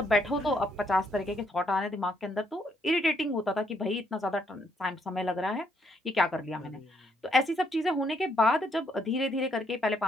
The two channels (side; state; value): both; normal; correlation 0.72